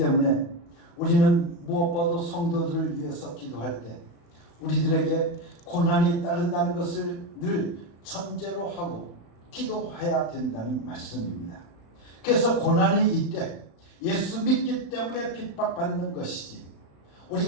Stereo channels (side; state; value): right; late; 35 ms